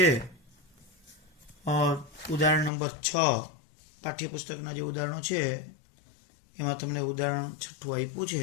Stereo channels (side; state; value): right; drops out; at 2.7 s